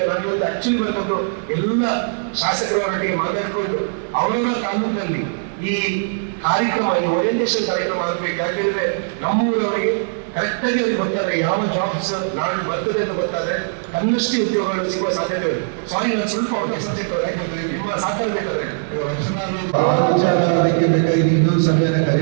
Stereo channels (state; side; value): silent; left; digital silence